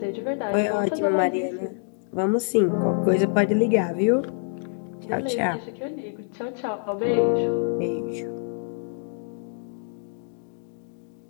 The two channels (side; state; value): right; silent; digital silence